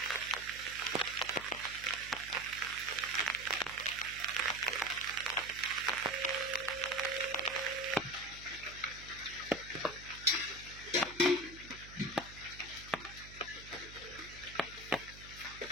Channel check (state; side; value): noise; right; hum, 16 dB below the sound